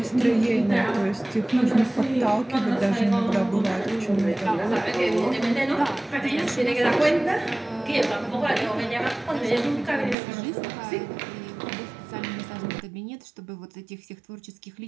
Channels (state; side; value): drops out; left; at 10.2 s